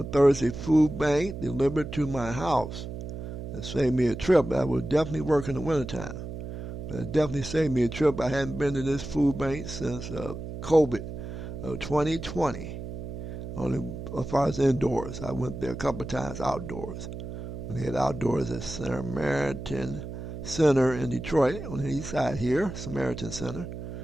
Thursday Food Bank delivered to my house. It saved me a trip. I would definitely work in the wintertime. But it definitely saved me a trip. I hadn't been to this food bank since COVID 2020. Only as far as indoors. I went there a couple of times outdoors. When they had outdoors at Samaritan Center in Detroit, on the east side here, Samaritan Center.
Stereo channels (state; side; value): noise; right; hum, 9 dB below the sound